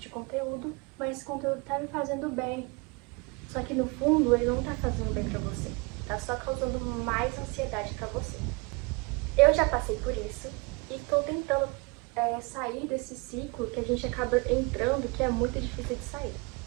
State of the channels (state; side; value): quieter; left; 28.5 dB